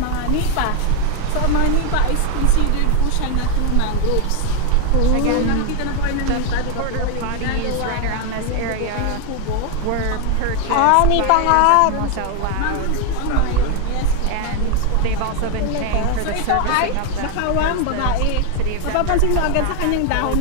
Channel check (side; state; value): both; different; correlation 0.01